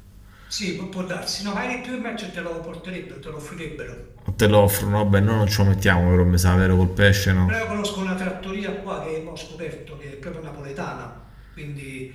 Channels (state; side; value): identical; both; correlation 1.00